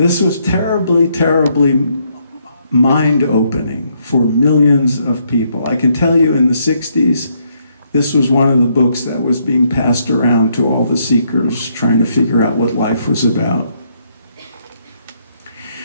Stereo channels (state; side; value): inverted; both; correlation -0.73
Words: was terribly, terribly mind-opening for millions of people. I can tell you in the 60s, this was one of the books that was being passed around to all the seekers trying to figure out what life was about.